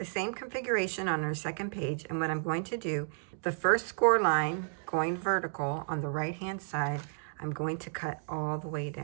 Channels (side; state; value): left; silent; digital silence